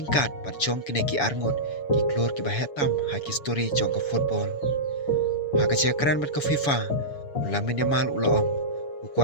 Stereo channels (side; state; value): right; late; 7.1 ms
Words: pat jong kine ki arngot ki klor ki ba hetam ha ki story jong ka football ha ka jakran bat ka FIFA ulamin yamal ula ong